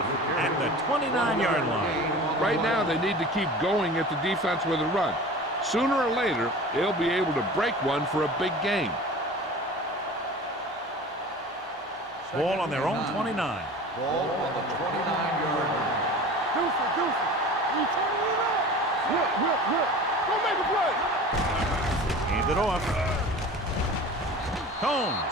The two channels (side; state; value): both; normal; correlation 0.38